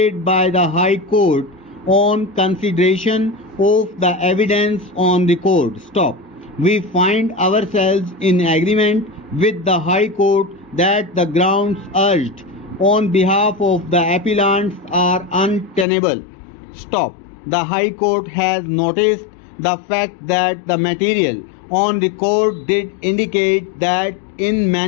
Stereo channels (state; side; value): drops out; right; at 15.9 s